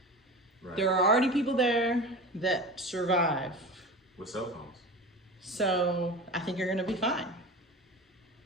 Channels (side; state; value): both; normal; correlation 0.32